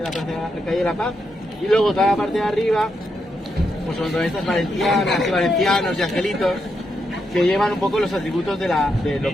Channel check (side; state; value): both; normal; correlation 0.82